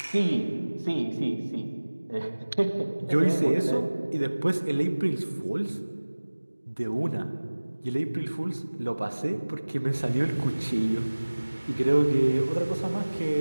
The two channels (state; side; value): inverted; both; correlation -1.00